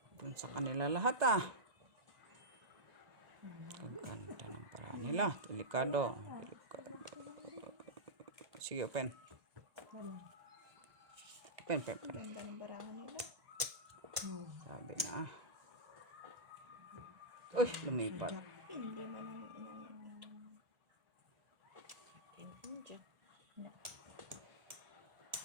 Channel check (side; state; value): left; late; 1.9 ms